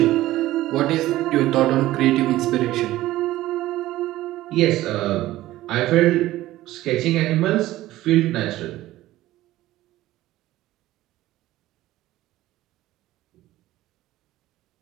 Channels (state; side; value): quieter; left; 15.9 dB